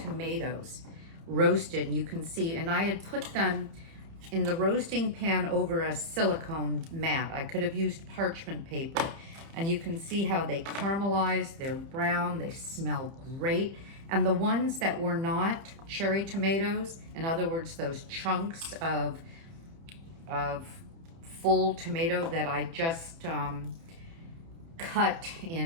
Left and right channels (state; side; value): late; left; 30 ms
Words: roasted, and you can see, and I had put them in the roasting pan over a silicone mat. I could have used parchment paper, and you can see how they caramelize, they're brown, they smell great, And the ones that were not cherry tomatoes, in other words, those chunks of full tomato that I just cut